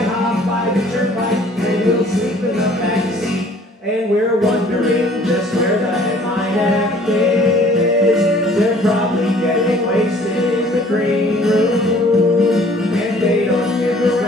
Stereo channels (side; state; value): both; normal; correlation 0.54